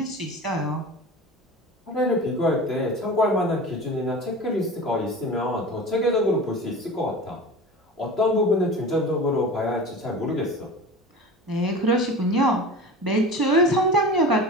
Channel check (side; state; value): both; normal; correlation 0.34